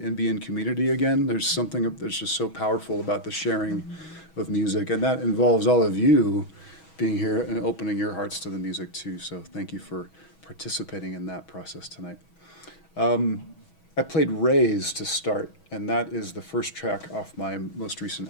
be in community again. There's something that's just so powerful about the sharing of music, and that involves all of you being here and opening your hearts to the music too. So thank you for participating in that process tonight. I played Raise to start, and that is the first track off my most recent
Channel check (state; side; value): late; right; 6.2 ms